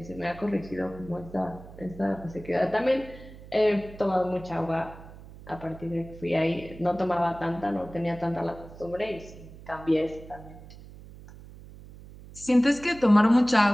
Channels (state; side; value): noise; right; hum, 17 dB below the sound